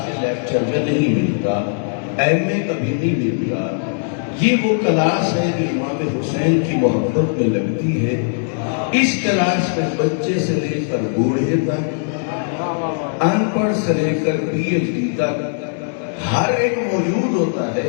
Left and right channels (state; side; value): silent; right; 66 dB below the other